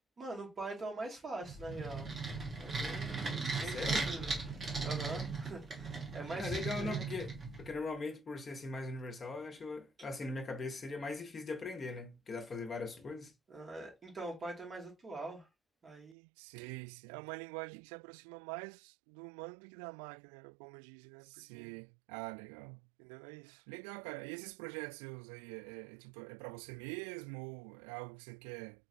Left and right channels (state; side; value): drops out; left; at 16.2 s